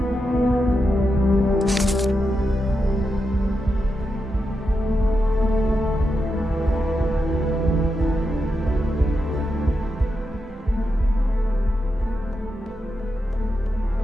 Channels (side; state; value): both; normal; correlation 0.87